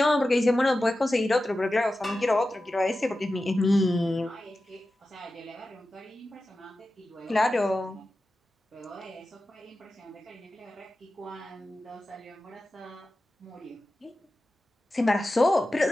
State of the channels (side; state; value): both; normal; correlation 0.94